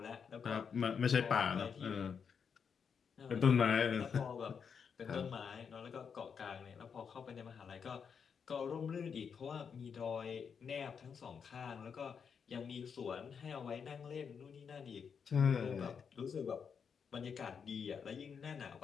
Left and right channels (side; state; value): right; quieter; 6.6 dB